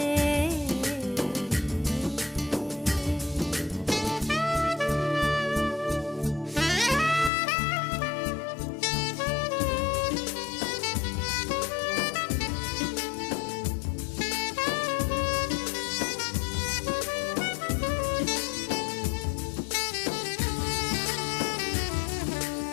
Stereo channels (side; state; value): right; drops out; at 7.3 s